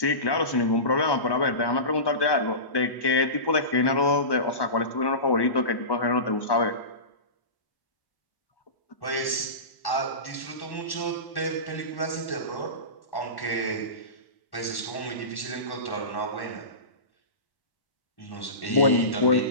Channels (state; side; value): late; right; 1.1 ms